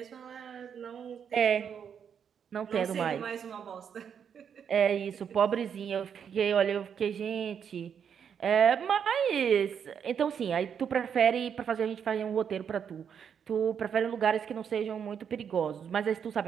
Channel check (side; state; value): left; quieter; 7.7 dB